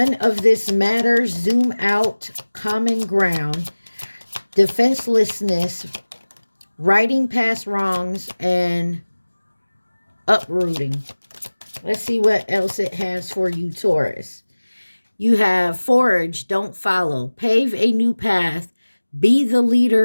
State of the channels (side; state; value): both; inverted; correlation -1.00